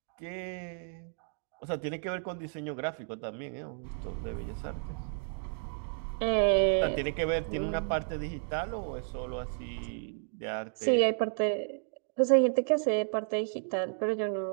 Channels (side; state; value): left; silent; 56 dB below the other